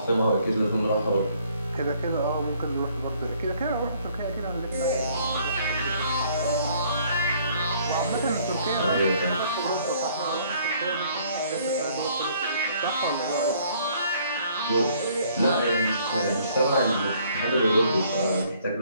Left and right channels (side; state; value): both; inverted; correlation -0.62